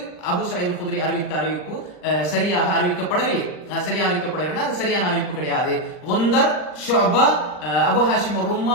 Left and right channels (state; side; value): late; right; 39 ms